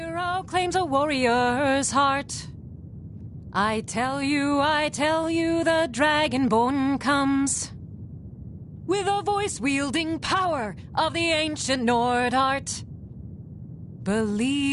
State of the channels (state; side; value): identical; both; correlation 1.00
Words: claims a warrior's heart. I tell you, the Dragonborn comes. With a voice-wielding power of the ancient Nord art.